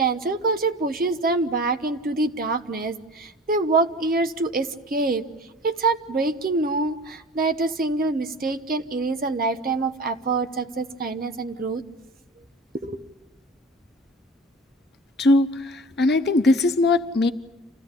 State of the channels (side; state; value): both; normal; correlation 0.40